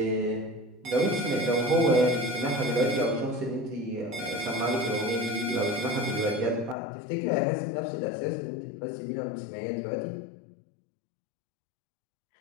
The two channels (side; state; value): right; drops out; at 6.8 s